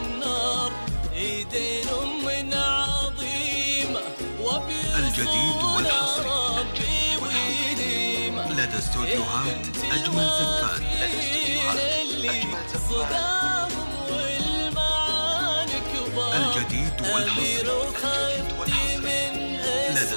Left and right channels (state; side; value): inverted; both; correlation -1.00